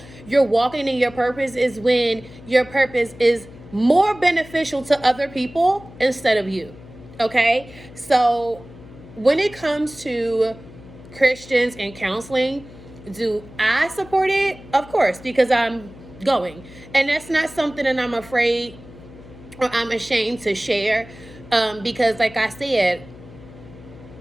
you're walking in your purpose, is when your purpose is more beneficial to other people instead of you. Okay? So when it comes to Christians and counseling, do I support it? Of course, because I'm going. And that's not something that I'm afraid or I'm ashamed to share, because like I said,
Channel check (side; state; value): left; noise; hum, 19 dB below the sound